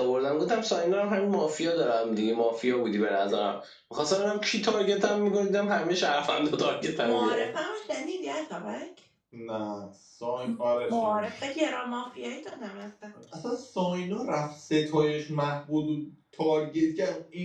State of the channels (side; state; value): both; identical; correlation 1.00